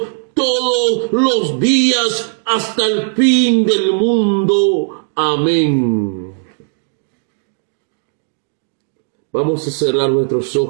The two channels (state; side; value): silent; left; digital silence